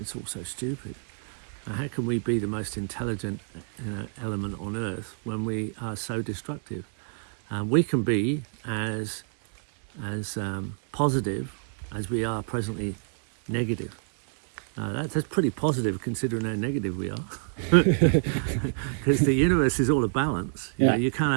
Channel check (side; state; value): left; silent; 60 dB below the other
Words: also stupid. How can we be the most intelligent element on earth when we are so destructive? We can be as positive as we are presently negative. That's pretty positive considering how negative we are. Because the universe is all a balance. You can't